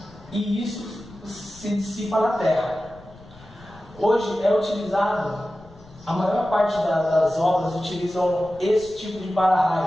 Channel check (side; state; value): left; noise; rumble, 23 dB below the sound